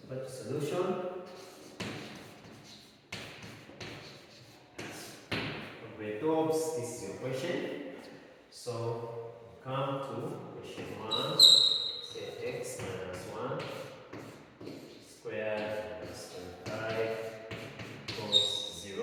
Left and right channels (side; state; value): both; identical; correlation 1.00